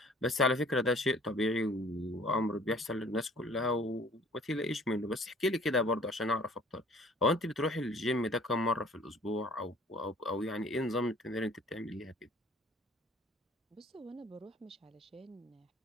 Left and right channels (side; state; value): both; normal; correlation 0.53